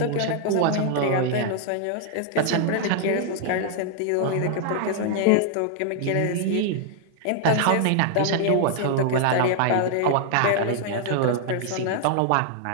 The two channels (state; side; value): different; both; correlation 0.00